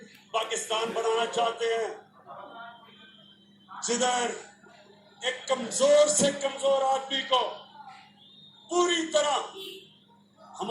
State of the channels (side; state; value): both; identical; correlation 1.00